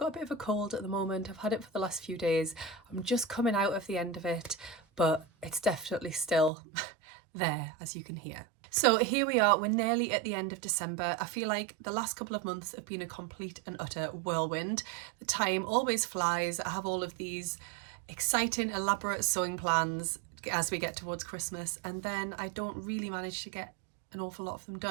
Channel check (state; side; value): drops out; left; at 6.5 s